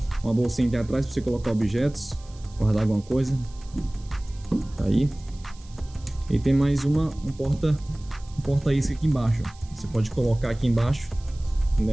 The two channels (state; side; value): noise; right; hiss, 25 dB below the sound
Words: uma bolsinha aqui atrás para você colocar objetos, guardar alguma coisa, tá aí. E tem mais um porta-isca aqui embaixo. Você pode colocar aqui embaixo,